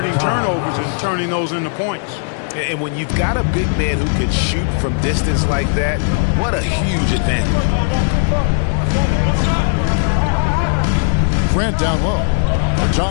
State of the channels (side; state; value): right; silent; digital silence